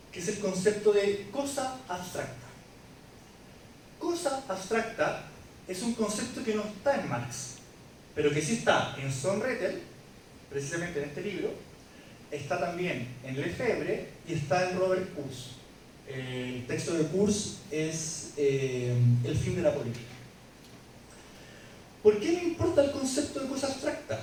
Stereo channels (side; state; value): both; identical; correlation 1.00